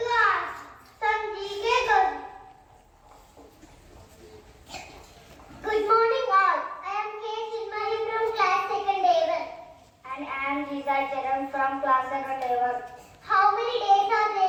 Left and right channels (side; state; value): both; identical; correlation 1.00